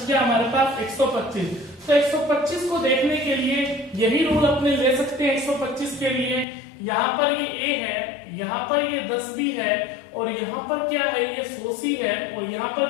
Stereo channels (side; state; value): right; drops out; at 6.5 s